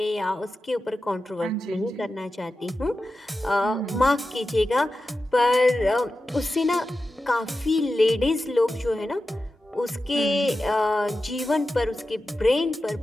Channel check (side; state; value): both; normal; correlation 0.92